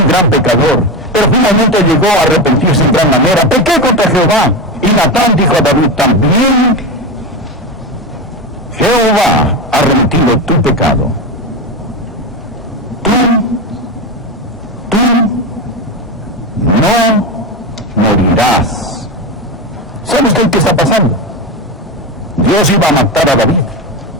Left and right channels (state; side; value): normal; both; correlation 0.18